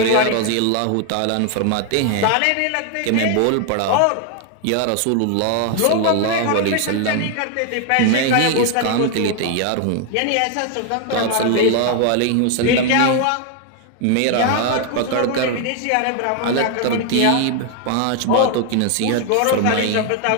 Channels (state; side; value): different; both; correlation 0.00